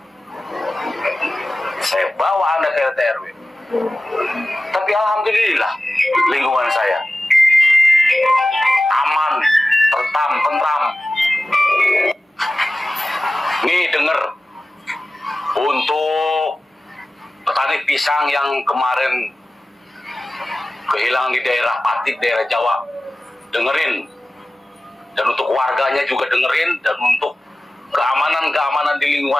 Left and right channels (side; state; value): both; normal; correlation 0.96